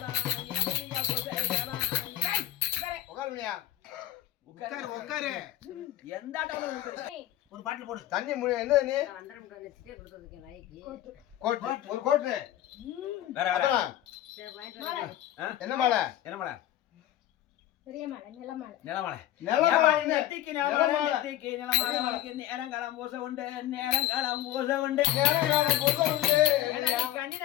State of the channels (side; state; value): right; quieter; 13.0 dB